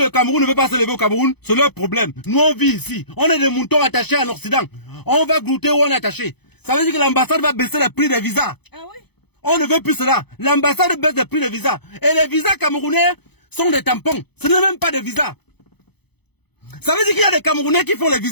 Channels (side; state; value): right; late; 0.98 ms